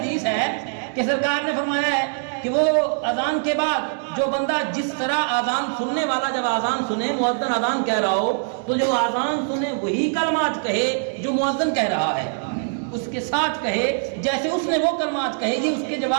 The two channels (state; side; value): silent; left; digital silence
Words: ہے کہ سرکار نے فرمایا ہے کہ وہ اذان کے بعد جو بندہ جس طرح اذان سننے والا جب اذان سنے، مؤذن اذان کہہ رہا ہو تو جو اذان سنے وہی کلمات کہے جو مؤذن کہہ رہا ہے، اس کے ساتھ کہے جیسے اس نے وہ کلمات کہے، یہ اس کے